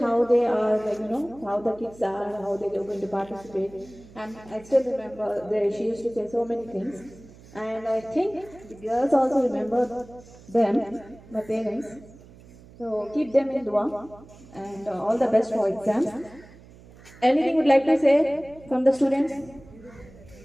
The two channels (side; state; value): right; noise; hum, 22 dB below the sound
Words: they are, like, how the kids are, how they are going to participate. And I still remember she used to say so many things. And I think the girls also remember them, my parents. So keep them in dua, and all the best for exams. Anything would like to say from the students?